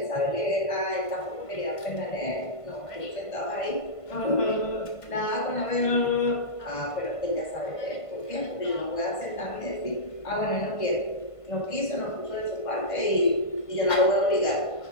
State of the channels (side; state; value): right; late; 1.5 ms